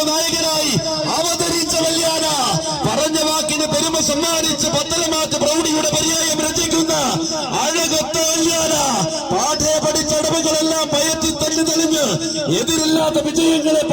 നായകനായി അവതരിച്ച വല്യാന. പറഞ്ഞ വാക്കിന് പെരുമ സമ്മാനിച്ച് പത്തലമാറ്റ് പ്രൗഢിയുടെ പര്യായം രചിക്കുന്ന അഴകൊത്ത വല്യാന. പാഠേ പഠിച്ചടവുകളെല്ലാം പയറ്റി തല്ലി തെളിഞ്ഞ് എതിരില്ലാത്ത വിജയങ്ങളെ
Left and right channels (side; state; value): both; identical; correlation 1.00